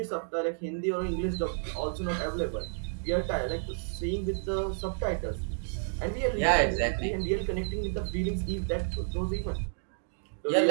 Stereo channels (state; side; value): silent; left; digital silence